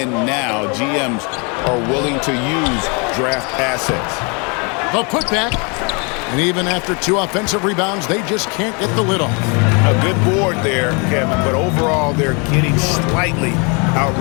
now, GMs are willing to use draft assets. The putback. And even after 2 offensive rebounds, they just can't get the lid off. A good board there, Kevin, but overall they're getting slightly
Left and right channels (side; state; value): right; quieter; 33.0 dB